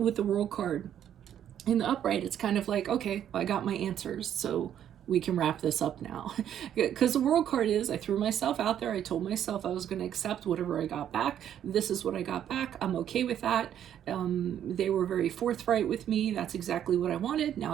the World card in the upright, it's kind of like, okay, well, I got my answers, so we can wrap this up now. Because the World card is, I threw myself out there. I told myself I was going to accept whatever I got back. This is what I got back. I'm okay with that. They were very forthright with me. That's exactly what I wanted.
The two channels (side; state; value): left; quieter; 10.1 dB